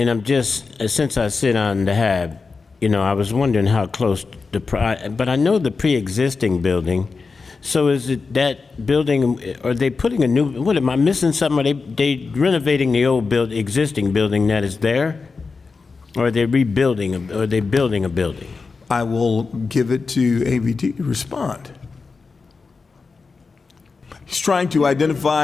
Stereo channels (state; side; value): quieter; right; 4.5 dB